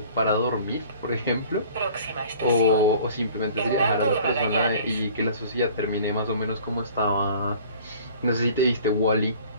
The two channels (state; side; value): inverted; both; correlation -0.49